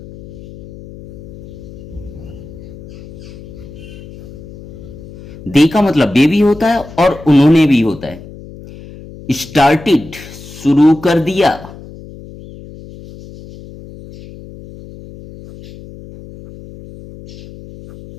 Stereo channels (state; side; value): noise; left; hum, 16 dB below the sound